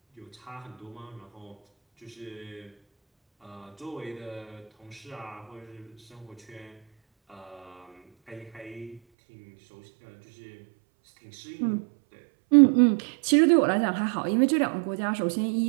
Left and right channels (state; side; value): drops out; left; at 9.0 s